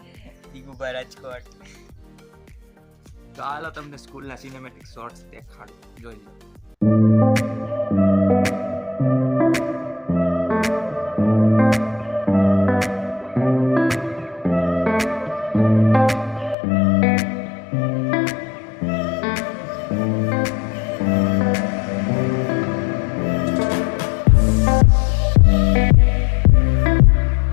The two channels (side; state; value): right; drops out; at 16.6 s